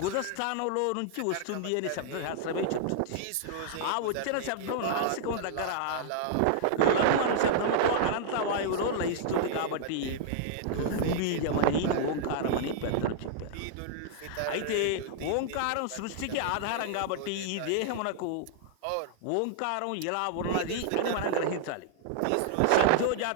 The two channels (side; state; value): both; different; correlation -0.01